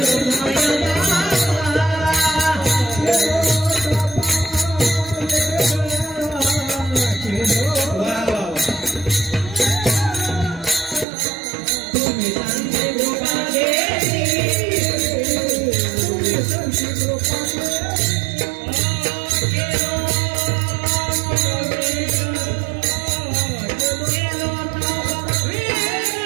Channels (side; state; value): left; drops out; at 11.1 s